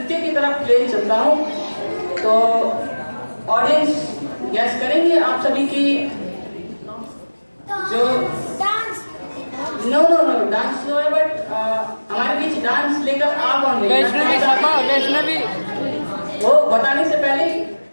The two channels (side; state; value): both; inverted; correlation -1.00